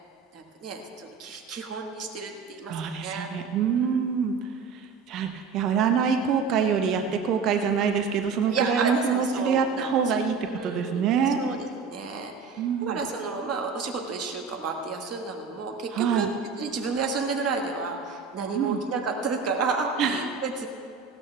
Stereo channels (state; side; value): quieter; left; 5.5 dB